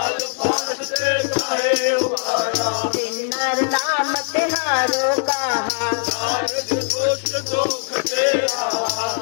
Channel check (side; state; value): right; silent; 65 dB below the other